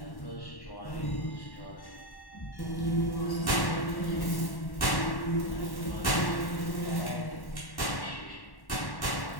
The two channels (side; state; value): right; late; 1.1 ms